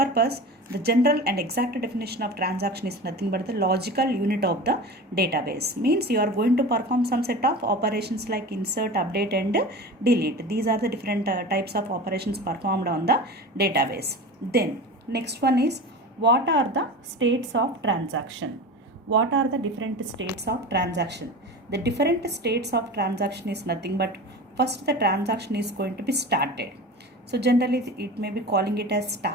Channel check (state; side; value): normal; both; correlation 0.32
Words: the general and exact definition of transaction is nothing but the logical unit of the database. Means you are going to perform some set of operations like insert, update and delete. These are the different types of operations performed on the database. Then next one is, what are the states of transaction? What are the different states of transaction? The different states of transaction is nothing but, first the transaction is going to be started. So generally it may be calling it as